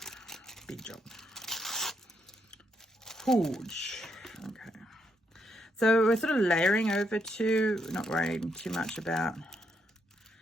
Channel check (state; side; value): normal; both; correlation 0.77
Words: Big job. Huge. Okay. So we're sort of layering over to, not worrying too much about